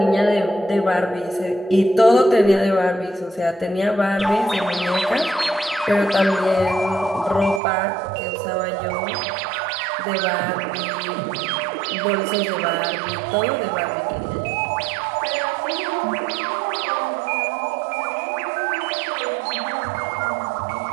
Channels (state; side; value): drops out; left; at 7.6 s